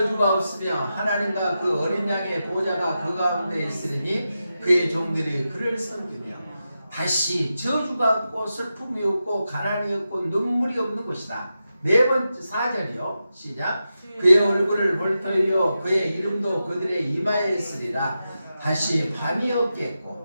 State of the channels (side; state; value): both; inverted; correlation -0.90